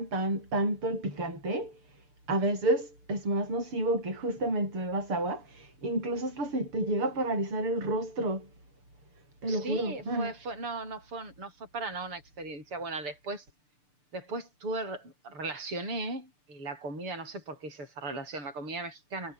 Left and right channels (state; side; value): late; left; 6.7 ms